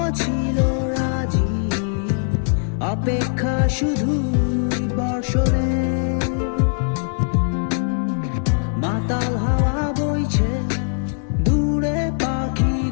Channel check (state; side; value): silent; right; 65 dB below the other